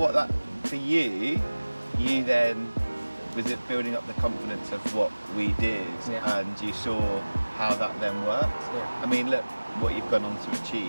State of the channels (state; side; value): inverted; both; correlation -1.00